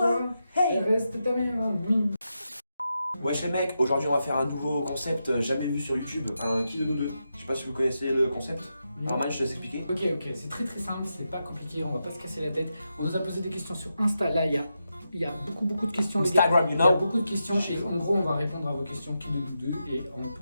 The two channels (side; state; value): both; inverted; correlation -0.87